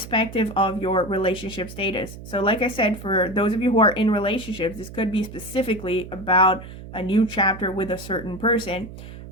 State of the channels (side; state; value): right; noise; hum, 14 dB below the sound